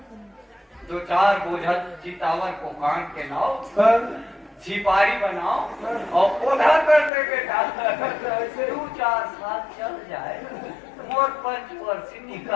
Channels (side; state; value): right; drops out; at 7.1 s